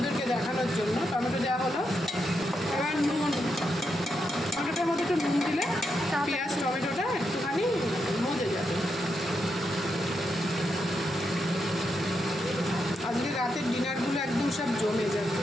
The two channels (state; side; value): normal; both; correlation 0.83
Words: দেখানোর জন্য। টমেটো দেওয়া হলো, এবার নুন, টমেটোটার মধ্যে একটু নুন দিলে পেঁয়াজ টমেটোটা একটুখানি মজে যাবে। আজকে রাতের ডিনারগুলো একদম সব জমে যাবে।